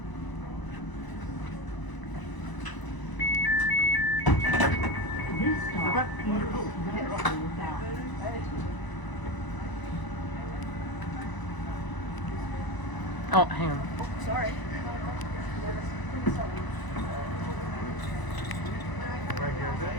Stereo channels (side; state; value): right; late; 1.0 ms